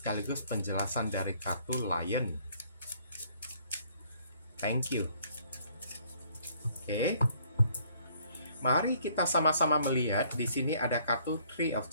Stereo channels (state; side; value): inverted; both; correlation -0.62